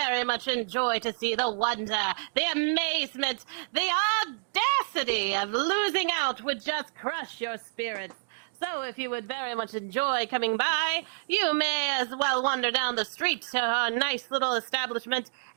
much enjoy to see the wonder, the amazement, the audacity of losing out would just crush your spirits. So if you would very much enjoy coming by, you may as well wander down the street to her nice little establishment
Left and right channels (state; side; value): silent; left; digital silence